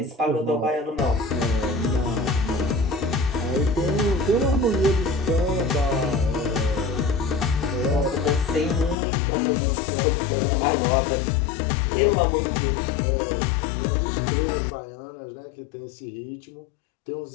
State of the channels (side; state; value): right; drops out; at 9.0 s